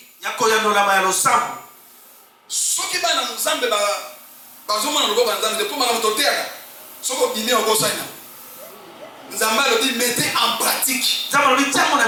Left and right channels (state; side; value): identical; both; correlation 1.00